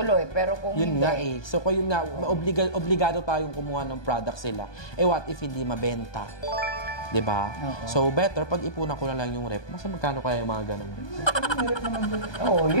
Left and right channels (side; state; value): right; late; 1.2 ms